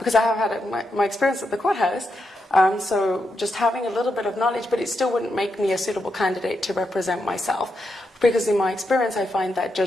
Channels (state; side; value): normal; both; correlation 0.84